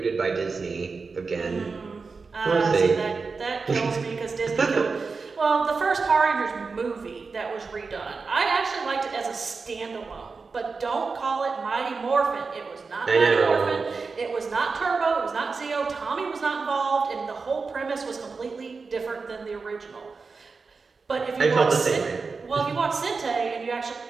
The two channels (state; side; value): quieter; left; 4.6 dB